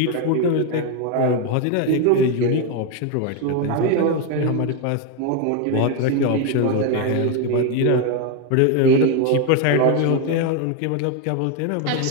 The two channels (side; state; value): both; different; correlation 0.02